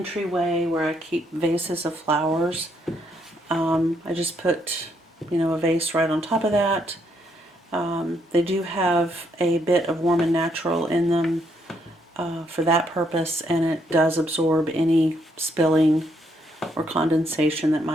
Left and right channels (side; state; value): both; normal; correlation 0.73